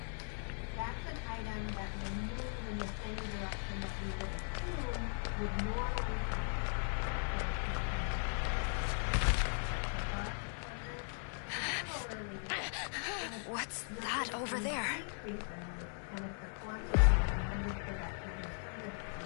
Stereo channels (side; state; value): right; silent; 52 dB below the other